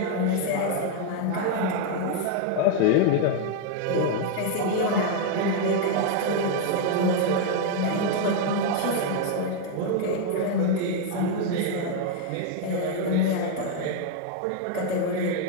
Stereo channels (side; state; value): both; different; correlation 0.01